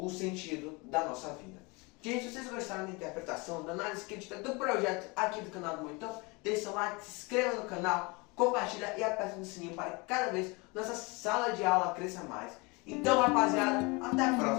sentido da nossa vida? Gente, se vocês gostaram da interpretação, da análise crítica do projeto aqui do canal do Monitor, deixe seu like, se inscreva no canal, compartilha e aperte no sininho para que cada vez nossa sala de aula cresça mais. Então, rapaziada, até a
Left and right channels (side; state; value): right; quieter; 27.3 dB